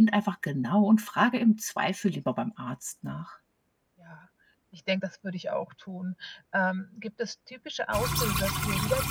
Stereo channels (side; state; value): both; identical; correlation 1.00